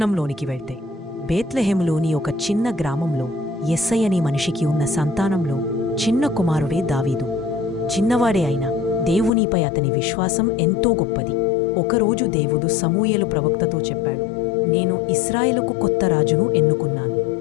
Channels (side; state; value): right; drops out; at 9.3 s